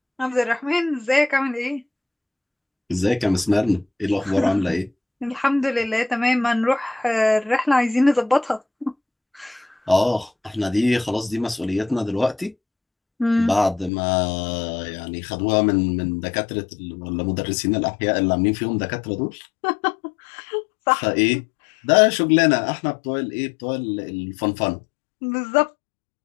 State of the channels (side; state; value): right; drops out; at 13.9 s